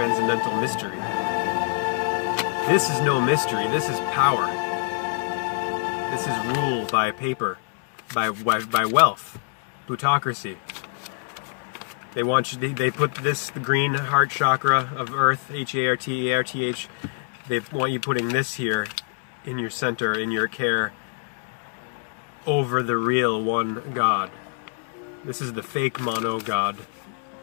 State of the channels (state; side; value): silent; right; 62 dB below the other